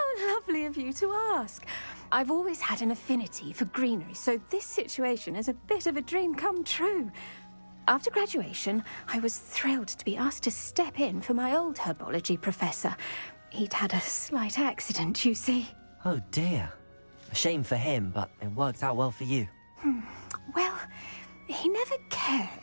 lovely of you to ask. I've always had an affinity for greenery, so this situation is a bit of a dream come true. After graduation, I was thrilled to be asked to step in for my old herbology professor. He'd had a slight accident, you see. Oh dear. A shame for him, but it worked out well for you. Well, he never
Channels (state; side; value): inverted; both; correlation -1.00